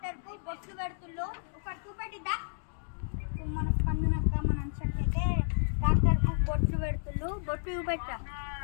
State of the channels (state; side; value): silent; right; digital silence